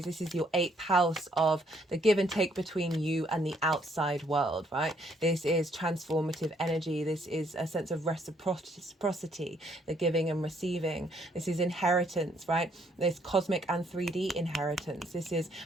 is your 8th house of the give and take between you and the outside world, right? This is transformative energy. This is a sense of reciprocity, the giving and receiving. This is inheritance, right? This cosmic and 3D inheritance. This is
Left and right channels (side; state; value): both; normal; correlation 0.68